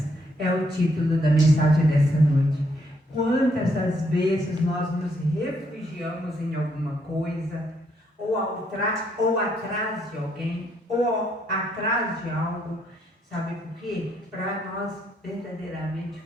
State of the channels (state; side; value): normal; both; correlation 0.73